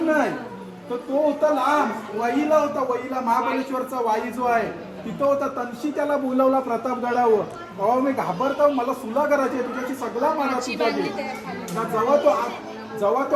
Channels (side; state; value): both; identical; correlation 1.00